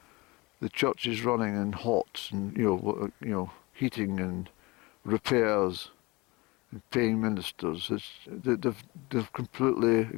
the church is running and hot, and heating and repairs and paying ministers. They've completely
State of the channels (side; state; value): right; quieter; 24.0 dB